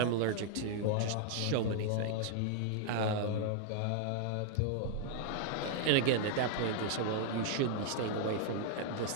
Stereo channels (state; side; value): different; both; correlation 0.00